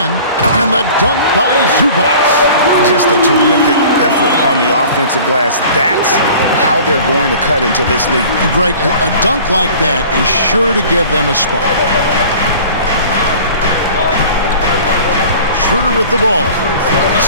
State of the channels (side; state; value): both; inverted; correlation -0.45